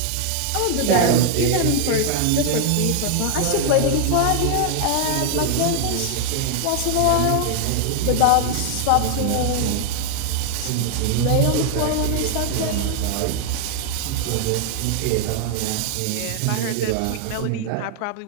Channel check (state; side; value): different; both; correlation 0.00